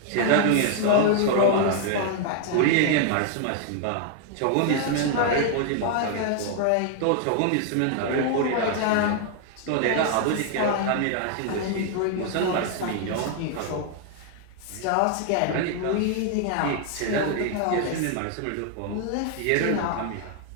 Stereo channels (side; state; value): both; different; correlation 0.00